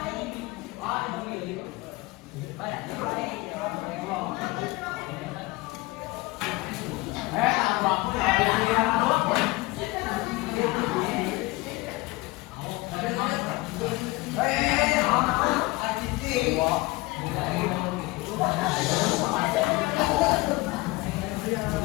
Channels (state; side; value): quieter; right; 22.5 dB